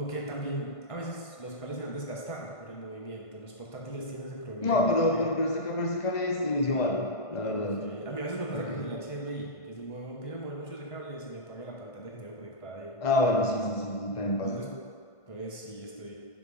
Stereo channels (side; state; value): right; late; 1.5 ms